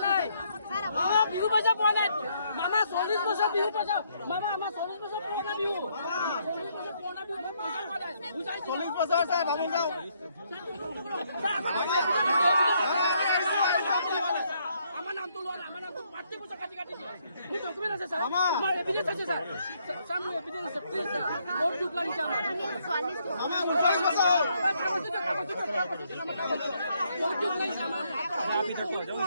নাই বিহু পইচা পোৱা নাই মামা 40 বছৰ বিহু পইচা মামা আমাৰ 40 বছৰ পুৰণা বিহু 40 বছৰ চাই ভাবি যাওঁ আমাৰ নাম তো লোৱা আমাৰ নাম তো পাৰ্টি পয়সা কাটি কাটি মোৰ ডকুমেন্ট আছে স্যাৰ আমাৰ এভিডেন্স আছে স্যাৰ স্যাৰ মোৰ এভিডেন্স আছে প্লিজ স্যার বহুত দুখ লাগিছে আমার মামা 40 বছর বহুত দুখ লাগিছে আমার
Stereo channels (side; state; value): both; inverted; correlation -0.72